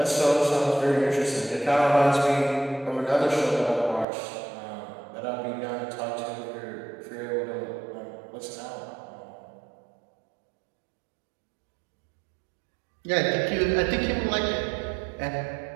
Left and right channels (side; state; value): left; drops out; at 4.0 s